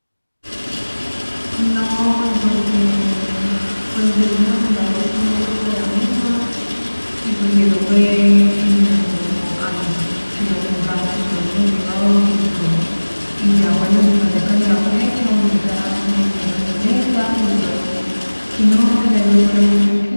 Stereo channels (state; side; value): inverted; both; correlation -1.00